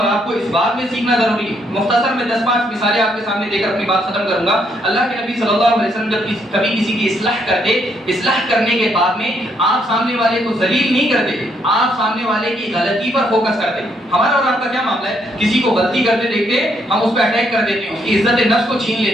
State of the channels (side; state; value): both; normal; correlation 0.73